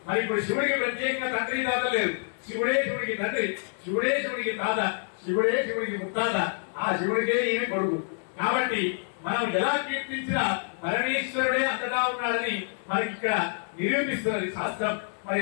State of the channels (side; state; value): right; silent; 60 dB below the other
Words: మరి ఇప్పుడు శివుడికి ప్రత్యేకంగా తండ్రి తాత లేదు. శివుడే శివుడికి తండ్రి, శివుడే శివుడికి తాత, శివుడే శివుడికి ముత్తాత, ఆ శివుడికే ఈయన కొడుకు. కాబట్టి మనం ఎలా కీర్తించినా పరమేశ్వరుడే అంతటా ఉన్నాడని మనకి ఇక్కడ నిరూపిస్తున్నది శాస్త్రం. మరి